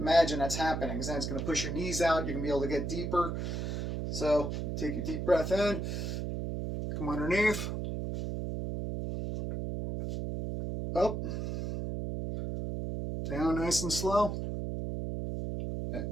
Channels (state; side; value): noise; right; hum, 3 dB below the sound